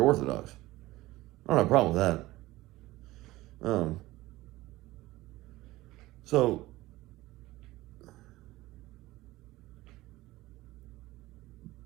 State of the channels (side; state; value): left; quieter; 18.1 dB